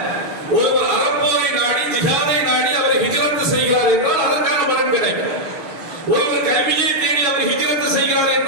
ஒருவர் அறப்போரை நாடி ஜிஹாதை நாடி அவர் ஹிஜ்ரத் செய்கிறார் என்றால் அதற்கான பலன் கிடைக்கும். ஒருவர் கல்வியை தேடி அவர் ஹிஜ்ரத் செய்கிறார்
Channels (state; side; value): late; left; 6.1 ms